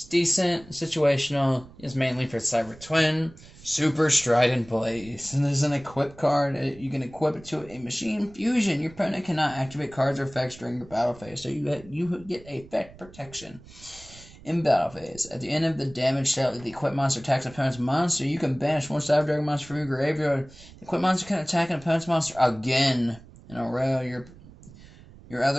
decent, situational. It's mainly for Cyber Twin. Super Strident Blaze. And there's an equip card. You can equip it to a machine fusion. Your opponent cannot activate cards or effects during your battle phase, so you get effect protection. In battle phase, at the end of the damage dealt, the equipped monster attacks an opponent's monster. You can banish 1 Cyber Dragon monster from your graveyard. The equipped monster can attack an opponent's monster again in a row. Your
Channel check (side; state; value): right; noise; rumble, 21 dB below the sound